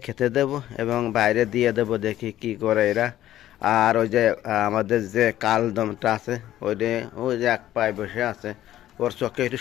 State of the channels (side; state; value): right; quieter; 13.1 dB